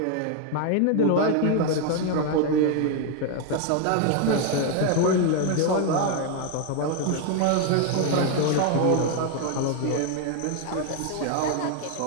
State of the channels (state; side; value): different; both; correlation 0.01